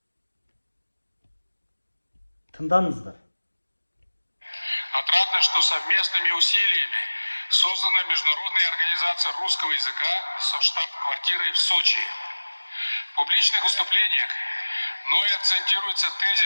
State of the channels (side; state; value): both; inverted; correlation -1.00